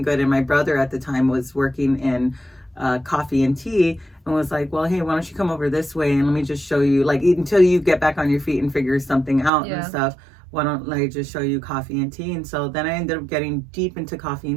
good. And my brother at the time was working in coffee and tea, and was like, well, hey, why don't you come over this way and let me just show you, like, until you get back on your feet and figure something out and stuff, why don't I just show you coffee and tea? And so then I ended up getting deep into coffee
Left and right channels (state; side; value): drops out; left; at 9.5 s